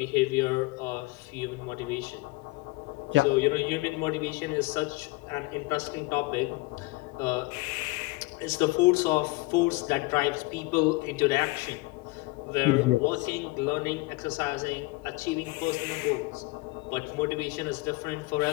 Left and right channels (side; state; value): right; quieter; 23.1 dB